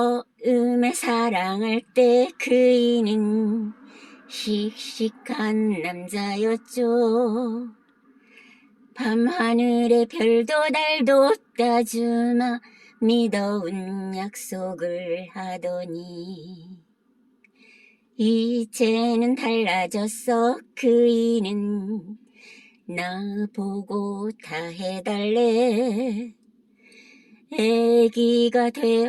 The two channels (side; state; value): both; identical; correlation 1.00